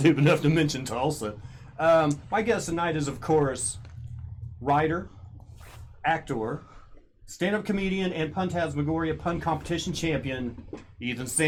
enough to mention Tulsa. My guest tonight is, of course, writer, actor, stand-up comedian, and Puntasmagoria Pun Competition champion, Ethan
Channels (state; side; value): identical; both; correlation 1.00